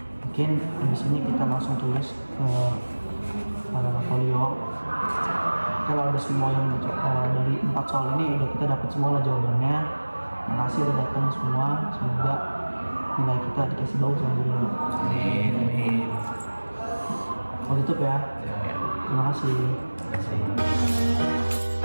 Mungkin habis ini kita langsung tulis ke folio. Kalau ada semua yang dari 4 soal ini udah kita dapat semua lah jawabannya. Makasih udah datang semua. Semoga nilai kita dikasih bagus sama guru. Amin. Mau tutup ya. Terima kasih. Terima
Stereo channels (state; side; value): inverted; both; correlation -1.00